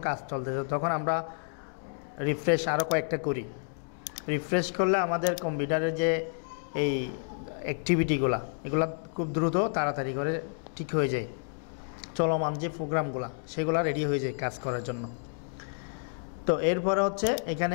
কাজ চলতেছে, তখন আমরা রিফ্রেশ আরও কয়েকটা করি। রিফ্রেশ করলে আমাদের কম্পিউটারের যে এই অ্যাক্টিভিটিগুলো, এগুলো খুব দ্রুত তাড়াতাড়ি করে ঠিক হয়ে যায়, চলমান যে প্রোগ্রামগুলো সেগুলো রেডি হয়ে যায় কাজ করার জন্য। তো এরপরে হচ্ছে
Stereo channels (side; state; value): right; silent; digital silence